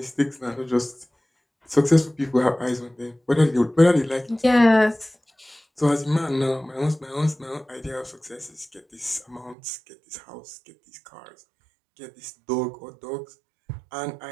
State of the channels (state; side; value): drops out; left; at 9.6 s